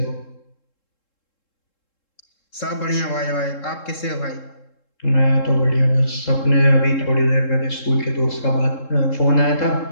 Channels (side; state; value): right; late; 3.7 ms